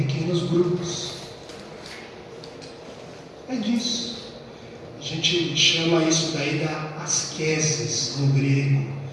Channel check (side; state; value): both; identical; correlation 1.00